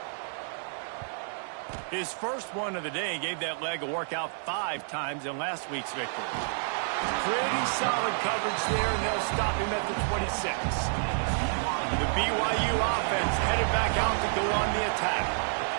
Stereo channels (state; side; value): silent; left; 58 dB below the other